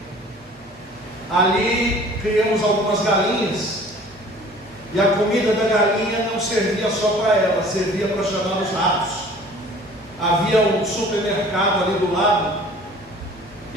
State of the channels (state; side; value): normal; both; correlation 0.48